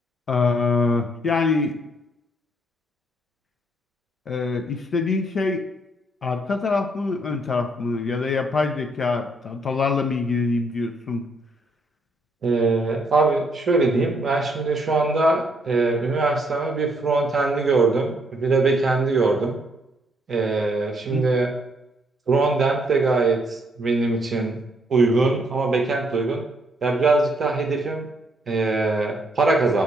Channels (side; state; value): both; normal; correlation 0.70